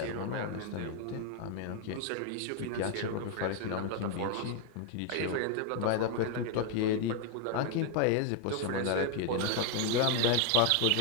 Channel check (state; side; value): different; both; correlation 0.00